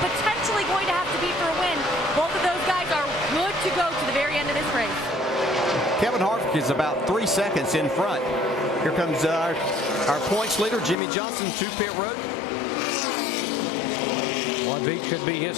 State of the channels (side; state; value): right; drops out; at 11.0 s